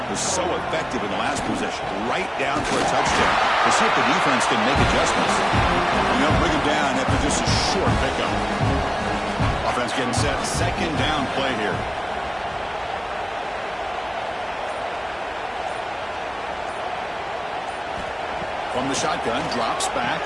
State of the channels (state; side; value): identical; both; correlation 1.00